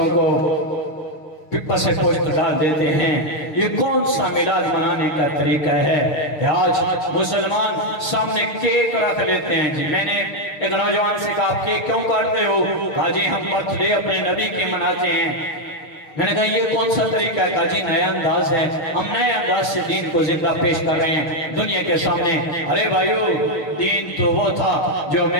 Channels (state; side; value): late; right; 6.5 ms